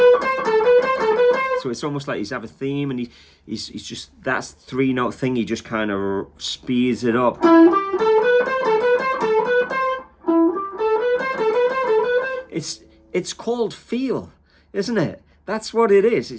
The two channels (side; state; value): both; identical; correlation 1.00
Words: it's almost like he's have a theme, and he's just, that's 3-note thing. He just kind of speeds it up. It's called feel, isn't it? That's what it is.